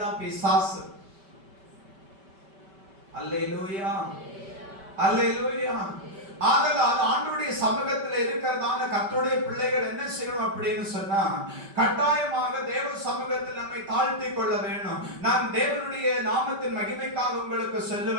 தான் பிசாசு. அல்லேலூயா, அல்லேலூயா. ஆதலால் ஆண்டவருடைய சமூகத்தில் இருக்கிறதான கர்த்தருடைய பிள்ளைகள் என்ன செய்யணும் அப்படின்னு சொன்னா, கட்டாயமாக தேவ சமூகத்தில் நம்மை தாழ்த்தி கொள்ள வேணும். நான் தேவனுடைய நாமத்தின் மகிமைக்காக உங்களுக்கு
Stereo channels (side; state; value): left; late; 5.2 ms